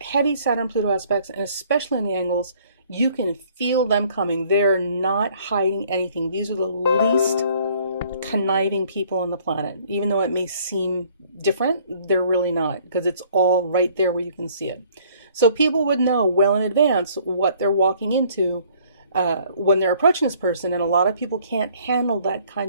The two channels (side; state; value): both; inverted; correlation -0.59